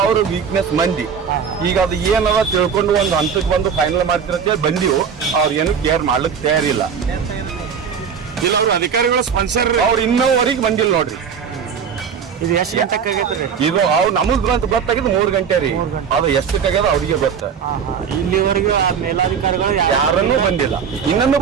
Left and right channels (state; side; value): quieter; left; 6.9 dB